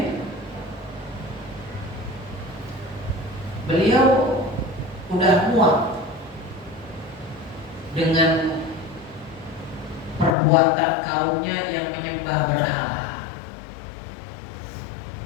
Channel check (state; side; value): drops out; right; at 10.3 s